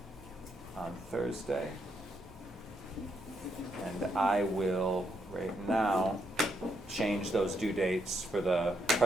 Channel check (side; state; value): both; normal; correlation 0.77